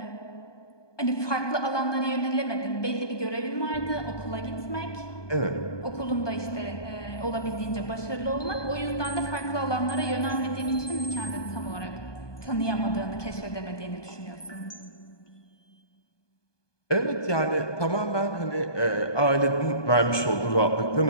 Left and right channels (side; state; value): right; late; 1.2 ms